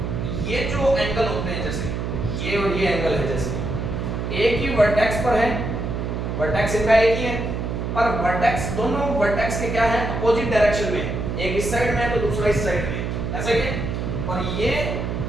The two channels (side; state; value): right; noise; hum, 3 dB below the sound